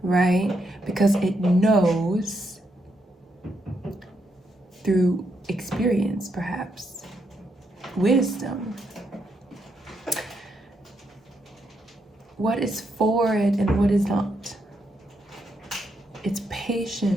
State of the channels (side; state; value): both; normal; correlation 0.79